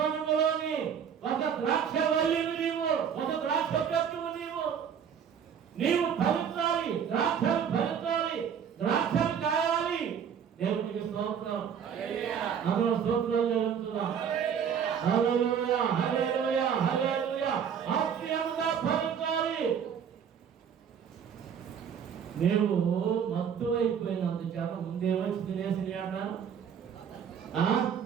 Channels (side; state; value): left; quieter; 7.8 dB